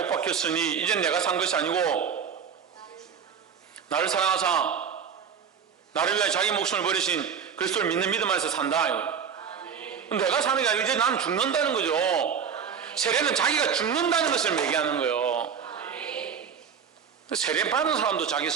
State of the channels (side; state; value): left; quieter; 7.1 dB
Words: 박혔으니 이젠 내가 산 것이 아니고 나를 사랑하사 나를 위해 자기 목숨을 버리신 그리스도를 믿는 믿음 안에서 산다. 내가 사는 게 아니고 이제 나는 죽는다는 거죠. 세례는 자기가 죽는다는 것을 얘기하는 거예요. 세례 받은 사람도 자기